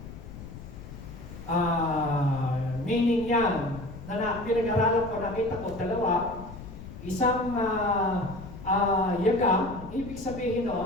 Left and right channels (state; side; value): noise; left; rumble, 13 dB below the sound